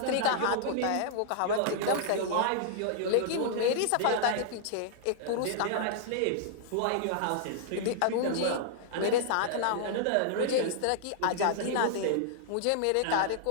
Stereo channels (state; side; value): different; both; correlation -0.01